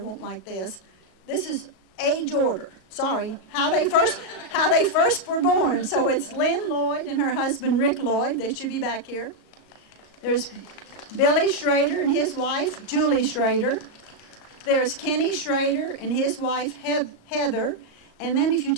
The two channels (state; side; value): late; right; 37 ms